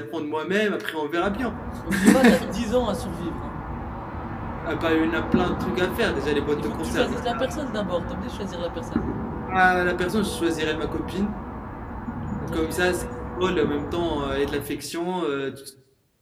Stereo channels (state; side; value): identical; both; correlation 1.00